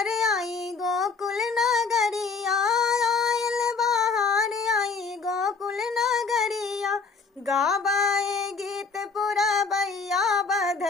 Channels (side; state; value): right; quieter; 4.8 dB